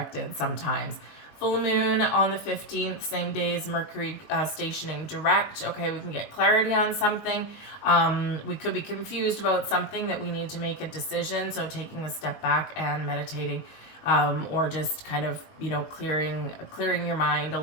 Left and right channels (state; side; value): late; right; 19 ms